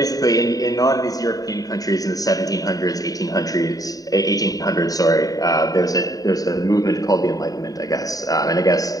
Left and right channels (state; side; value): late; right; 0.18 ms